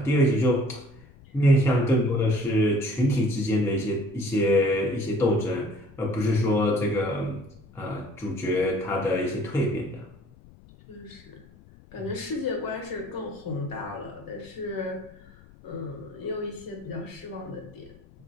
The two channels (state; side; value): noise; left; rumble, 24 dB below the sound